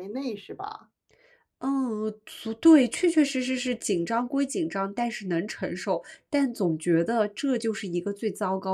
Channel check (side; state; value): both; identical; correlation 1.00